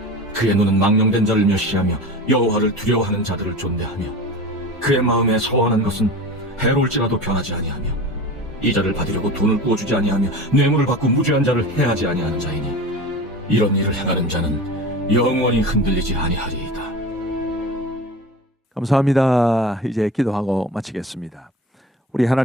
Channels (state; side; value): normal; both; correlation 0.33